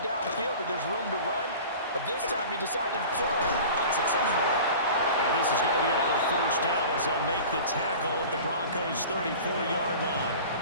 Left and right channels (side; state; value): both; inverted; correlation -0.39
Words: downfield that there's room to run, but this time he decided to throw unsuccessfully. And this is going to be another 1st down as they'll make the tackle at the Broncos' 34-yard line.